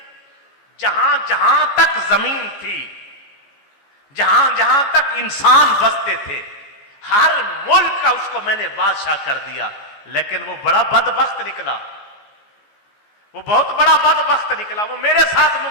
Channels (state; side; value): late; right; 14 ms